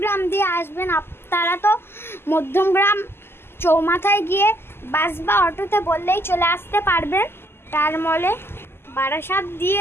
দিয়ে আসবেন, তারা তো মধ্যমগ্রাম চৌমাথায় গিয়ে বাস বা অটোতে বললেই চলে আসতে পারবেন স্টার মলে। বারাসাত দিয়ে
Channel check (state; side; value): late; right; 0.12 ms